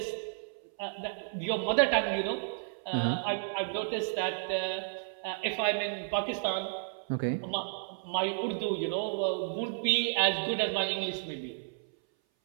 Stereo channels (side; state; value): left; silent; 56 dB below the other